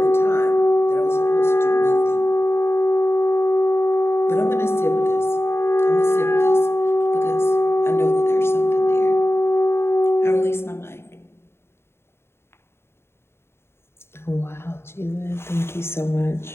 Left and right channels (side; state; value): right; late; 0.12 ms